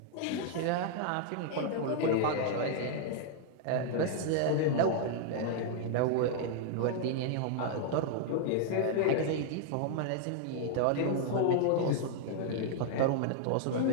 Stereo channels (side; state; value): both; different; correlation -0.01